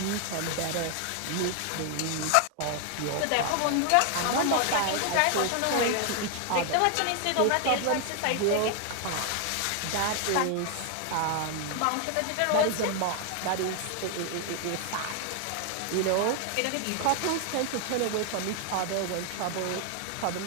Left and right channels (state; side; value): different; both; correlation 0.00